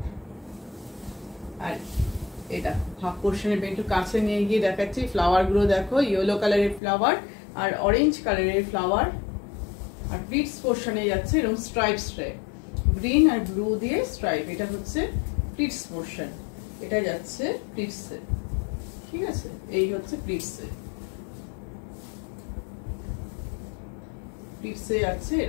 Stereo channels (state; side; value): drops out; right; at 6.8 s